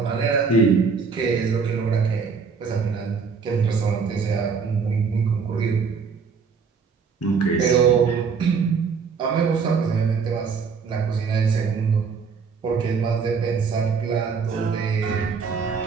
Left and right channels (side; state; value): left; quieter; 5.5 dB